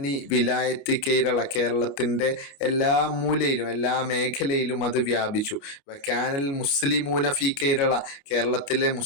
വിലായത്ത് കേരള, കേരളത്തിൻ്റെ എല്ലാ മൂലയിലും എല്ലാ മേഖലയിലും അത് വ്യാപിച്ചു. വകാനൽ മുസ്ലിമൂന ഫി കേരള, കേരളത്തിലെ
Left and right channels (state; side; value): late; right; 29 ms